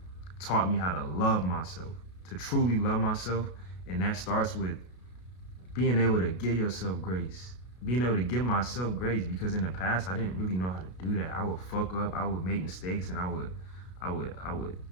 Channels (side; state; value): right; late; 33 ms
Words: taught me how to love myself, to truly love myself. And that starts with being able to give yourself grace, being able to give myself grace, because in the past I didn't really know how to do that. I would fuck up, I would make mistakes, and I would